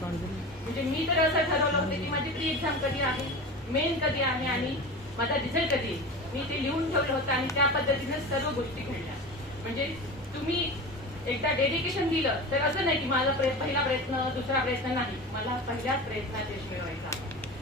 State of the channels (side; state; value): both; normal; correlation 0.30